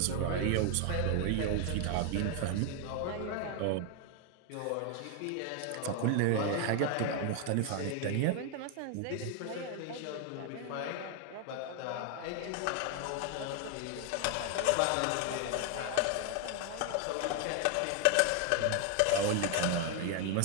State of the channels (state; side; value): different; both; correlation 0.01